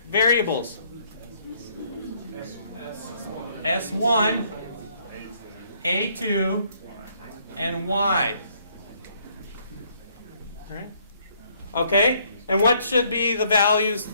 S1, A2, and Y. All right? Okay? And what should be the values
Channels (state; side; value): inverted; both; correlation -0.66